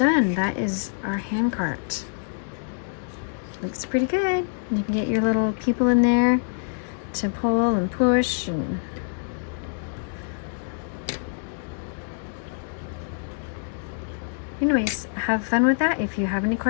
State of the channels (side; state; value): right; silent; digital silence